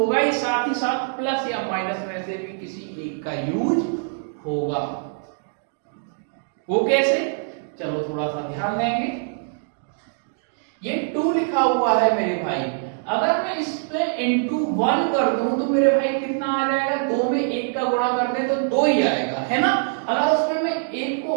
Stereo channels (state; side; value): silent; left; digital silence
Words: ही, साथ ही साथ प्लस या माइनस में से भी किसी एक का यूज होगा। वो कैसे? चलो थोड़ा सा ध्यान देंगे। ये 2 लिखा हुआ है मेरे भाई, अगर मैं इस पे इंटू 1 कर दूं तो मेरे भाई कितना आ जाएगा? 2 में 1 का गुणा कर दे तो 2 ही आएगा, है ना? अगर उसमें मैं 1 को